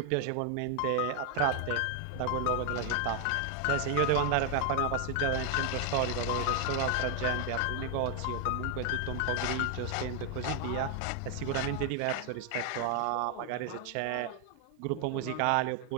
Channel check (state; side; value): different; both; correlation 0.01